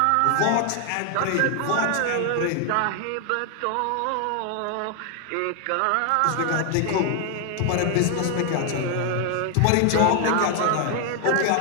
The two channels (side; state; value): both; different; correlation 0.00